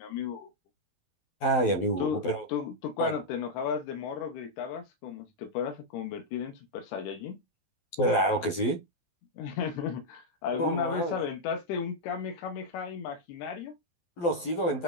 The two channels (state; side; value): late; right; 12 ms